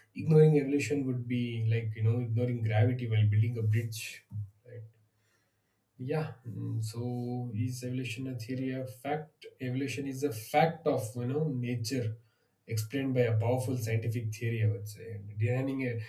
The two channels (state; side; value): identical; both; correlation 1.00